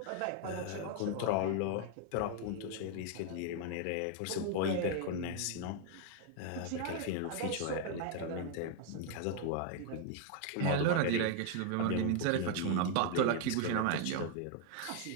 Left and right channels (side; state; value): both; different; correlation 0.00